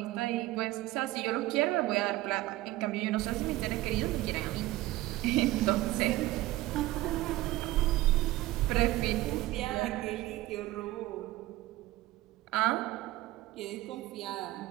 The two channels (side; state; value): left; quieter; 17.5 dB